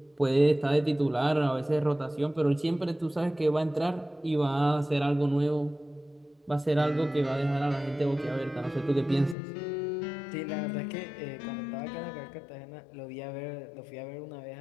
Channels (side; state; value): right; drops out; at 9.3 s